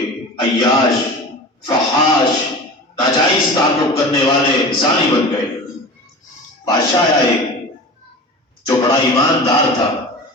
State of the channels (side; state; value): both; normal; correlation 0.34